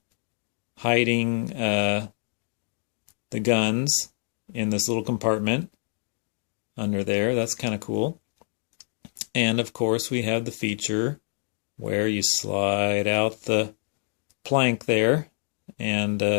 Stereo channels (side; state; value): right; silent; digital silence